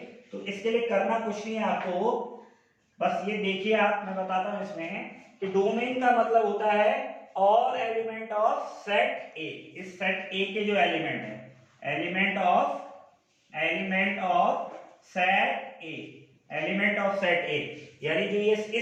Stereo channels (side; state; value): both; identical; correlation 1.00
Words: तो इसके लिए करना कुछ नहीं है आपको, बस ये देखिए आप, मैं बताता हूं इसमें कि डोमेन का मतलब होता है all element of set A. इस सेट ए के जो एलिमेंट है, element of set A, element of set A, यानी जो ये